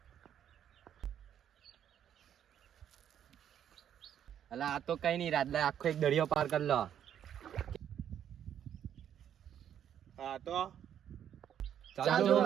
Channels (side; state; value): left; quieter; 9.7 dB